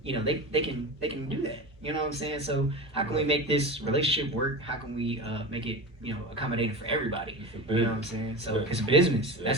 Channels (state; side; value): normal; both; correlation 0.27